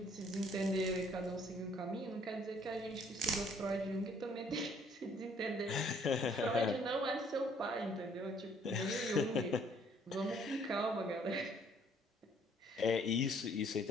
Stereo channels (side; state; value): both; normal; correlation 0.62